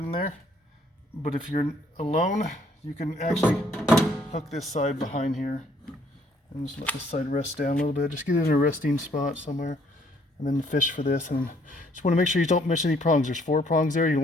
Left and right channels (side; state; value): both; normal; correlation 0.65